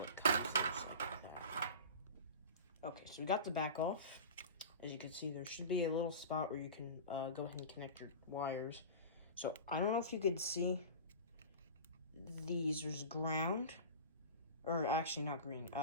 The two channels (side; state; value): both; inverted; correlation -0.33